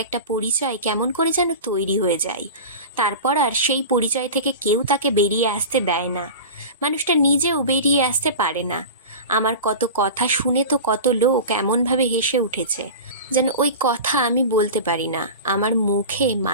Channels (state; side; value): inverted; both; correlation -0.31